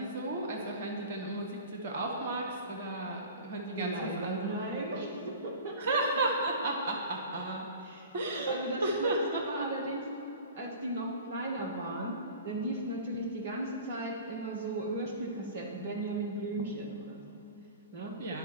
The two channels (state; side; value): inverted; both; correlation -0.40